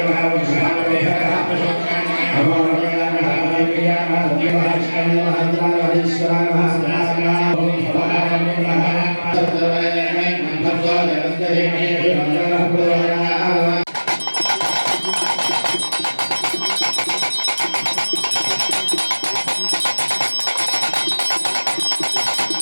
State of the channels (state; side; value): inverted; both; correlation -1.00